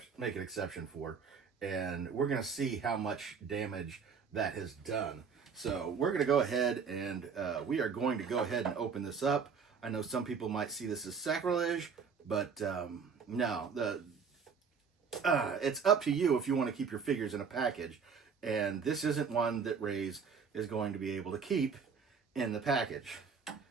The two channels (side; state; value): left; quieter; 6.0 dB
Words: an exception for. And we're going to see how much damage that has done. So we're going to go ahead and we are going to go ahead and open this up. I know some people might see this as sacrilege, but no, it's up to you if you want to keep your figures in a package. And this isn't one that Raze is going to be able to keep in the package,